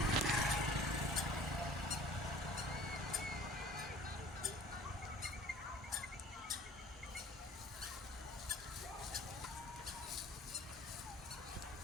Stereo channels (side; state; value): both; normal; correlation 0.48